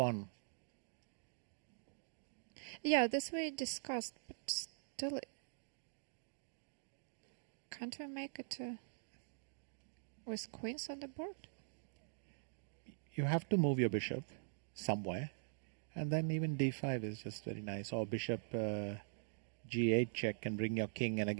Yeah, this we discussed, but still, can't we make it with queens on the board? You have to move your bishop somewhere, and then even d5 is just very nice. Or bishop g8 check can bring your king, and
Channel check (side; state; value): left; silent; digital silence